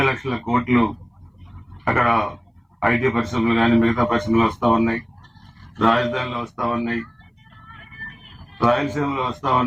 లక్షల కోట్లు అక్కడ ఐటీ పరిశ్రమలు కానీ మిగతా పరిశ్రమలు వస్తూ ఉన్నాయి, రాజధానిలో వస్తూ ఉన్నాయి, రాయలసీమలో వస్తూ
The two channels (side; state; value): both; identical; correlation 1.00